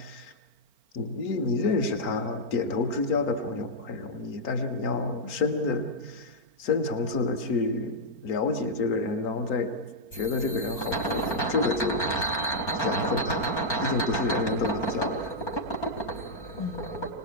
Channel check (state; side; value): late; right; 4.4 ms